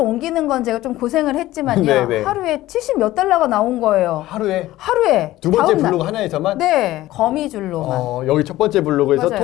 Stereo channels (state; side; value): quieter; right; 16.0 dB